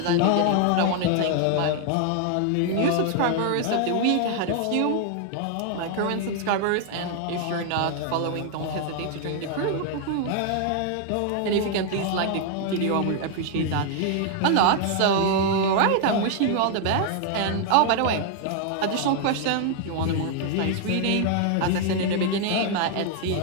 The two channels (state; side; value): different; both; correlation 0.00